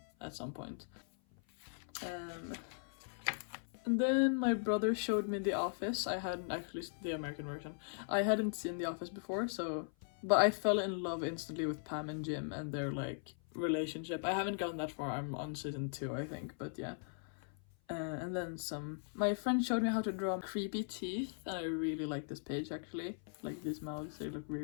at some point. And then my brother showed me The Office. I hadn't actually seen the American version. I hadn't seen The Office before, but I fell in love instantly with Pam and Jim and their like relationship. I haven't gotten that far. I'm on season 2, I think, but yeah. And then my friend showed me how to draw creepy teeth, and I really like this page actually. Like these mouths, they look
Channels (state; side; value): silent; right; 52 dB below the other